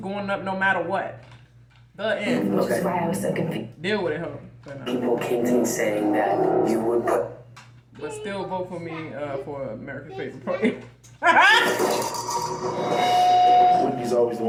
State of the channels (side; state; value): both; identical; correlation 1.00